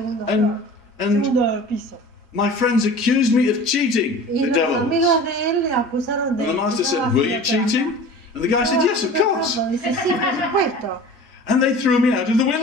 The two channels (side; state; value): both; normal; correlation 0.40